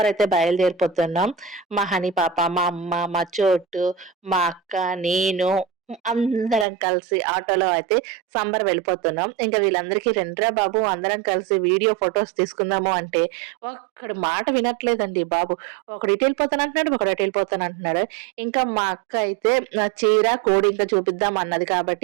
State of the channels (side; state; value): left; drops out; at 6.7 s